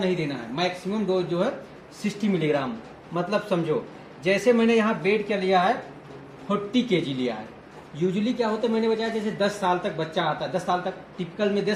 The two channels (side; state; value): both; identical; correlation 1.00